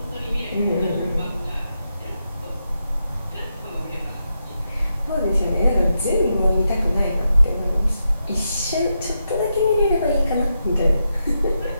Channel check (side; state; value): both; inverted; correlation -0.85